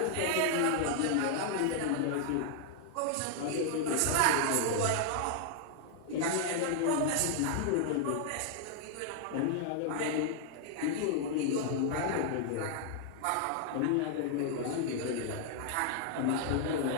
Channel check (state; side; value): different; both; correlation 0.00